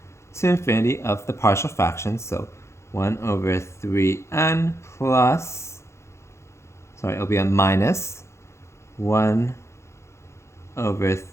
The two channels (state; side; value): late; right; 0.13 ms